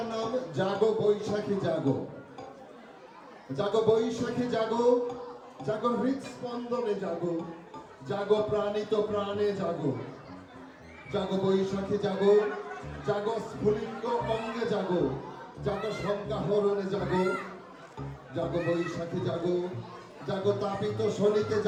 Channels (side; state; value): both; identical; correlation 1.00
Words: নাম জাগো বৈশাখী জাগো। জাগো বৈশাখী জাগো, জাগো হৃৎস্পন্দনে জাগো, জাগো প্রাণিত প্রাণে জাগো। জাগো বৈশাখী জাগো, জাগো স্ফুলিঙ্গ অঙ্গে জাগো, জাগো সংজ্ঞাহরণে জাগো। জাগো বৈশাখী জাগো, জাগো তাপিত শনিতে